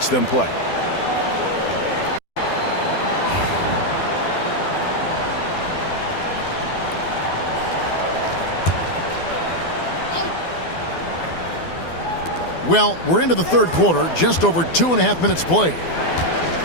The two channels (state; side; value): late; right; 12 ms